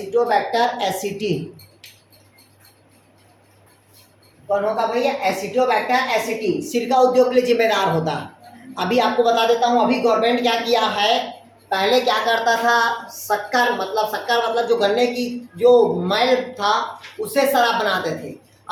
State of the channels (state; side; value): identical; both; correlation 1.00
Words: एसिटी कौन होगा भैया? एसिटोबैक्टर एसिटी सिरका उद्योग के लिए जिम्मेदार होता है। अभी आपको बता देता हूँ, अभी गवर्नमेंट क्या किया है, पहले क्या करता था? शक्कर मतलब जो गन्ने की जो मैल था उससे शराब बनाते थे।